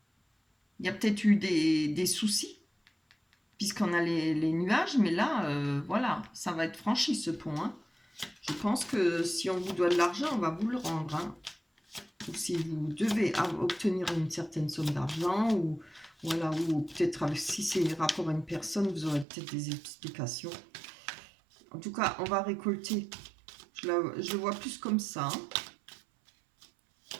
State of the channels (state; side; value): drops out; left; at 19.2 s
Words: Il y a peut-être eu des soucis puisqu'on a les nuages, mais là, voilà, ça va être franchi ce pont. Hein. Je pense que si on vous doit de l'argent, on va vous le rendre. Hein. Ou si vous devez obtenir une certaine somme d'argent, ou voilà, ou peut-être si c'est rapport à une personne, vous aurez peut-être des explications. En tout cas, on va récolter. Je le vois plus comme ça. Hein.